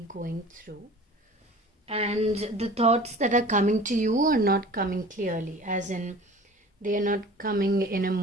going through, and the thoughts that are coming to you are not coming clearly, as in they are not coming in a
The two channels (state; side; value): normal; both; correlation 0.43